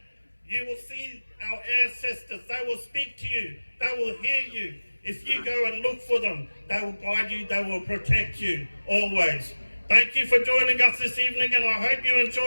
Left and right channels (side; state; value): both; inverted; correlation -1.00